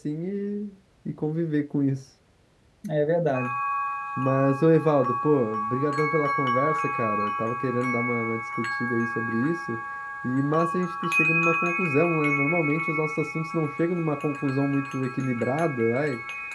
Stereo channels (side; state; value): both; identical; correlation 1.00